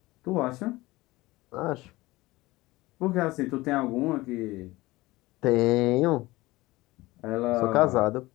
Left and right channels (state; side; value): quieter; right; 19.8 dB